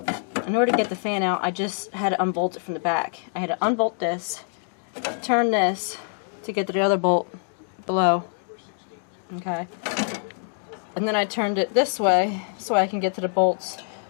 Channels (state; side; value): silent; right; 58 dB below the other